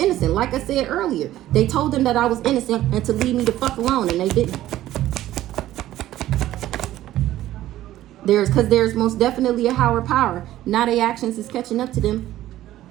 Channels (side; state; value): left; quieter; 14.1 dB